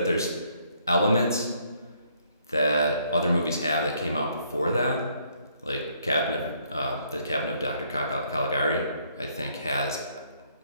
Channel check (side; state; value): both; inverted; correlation -0.67